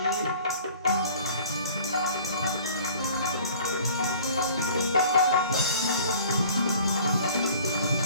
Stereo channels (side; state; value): both; inverted; correlation -0.49